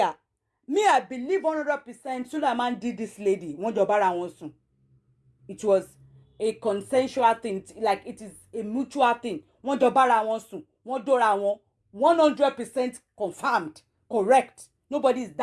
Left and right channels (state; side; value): identical; both; correlation 1.00